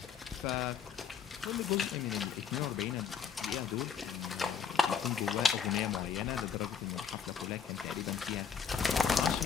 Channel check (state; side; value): quieter; right; 6.9 dB